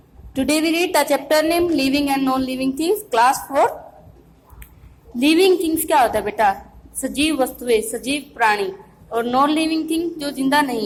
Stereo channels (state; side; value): identical; both; correlation 1.00